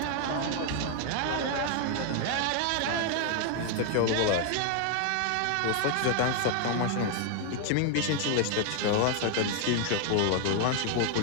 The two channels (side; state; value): both; different; correlation 0.00